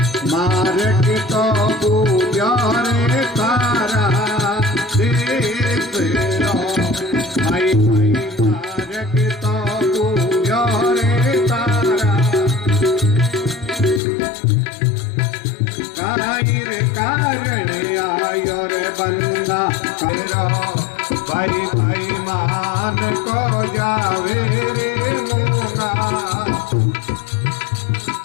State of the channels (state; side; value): drops out; right; at 14.0 s